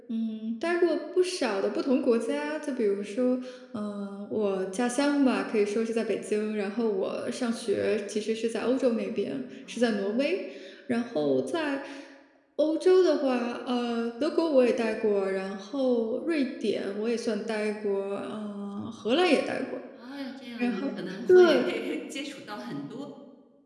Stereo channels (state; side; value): identical; both; correlation 1.00